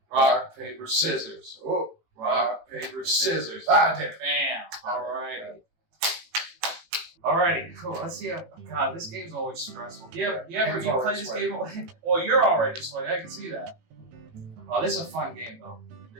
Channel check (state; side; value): late; left; 18 ms